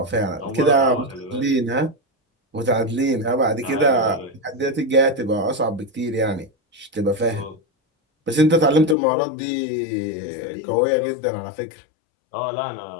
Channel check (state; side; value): drops out; right; at 9.0 s